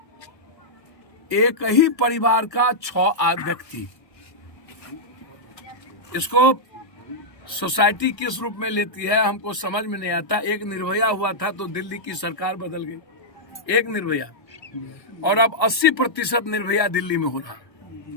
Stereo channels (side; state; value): right; late; 1.4 ms